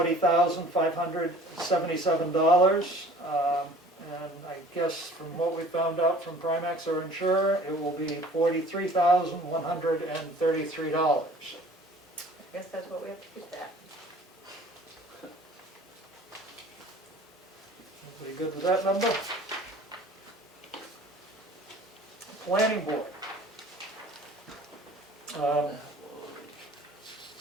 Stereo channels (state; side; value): normal; both; correlation 0.48